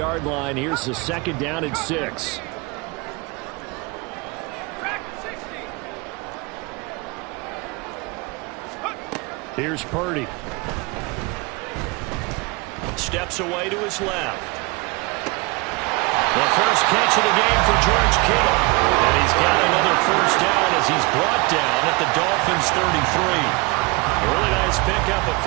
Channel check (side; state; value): left; quieter; 26.1 dB